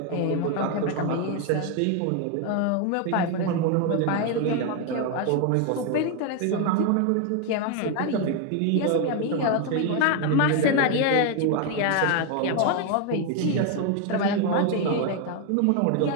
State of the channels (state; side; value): different; both; correlation 0.01